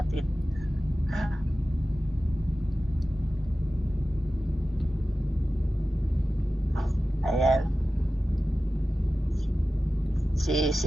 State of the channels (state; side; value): normal; both; correlation 0.95